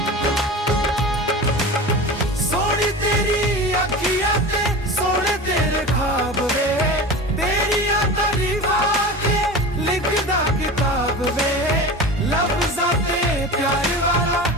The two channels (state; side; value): normal; both; correlation 0.32